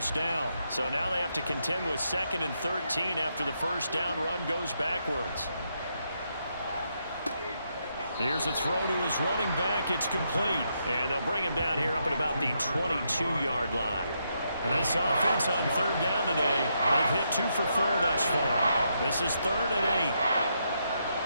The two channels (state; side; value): inverted; both; correlation -0.79